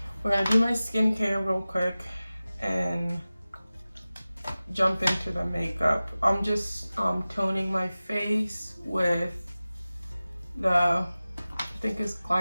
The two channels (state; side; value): inverted; both; correlation -0.97